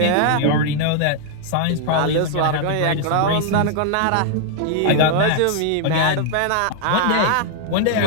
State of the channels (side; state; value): both; different; correlation 0.00